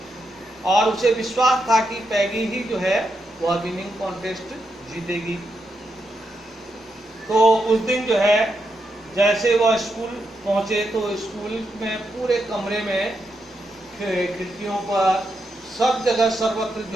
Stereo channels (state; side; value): normal; both; correlation 0.83